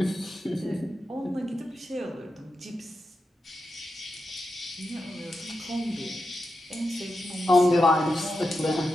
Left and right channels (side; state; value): both; normal; correlation 0.89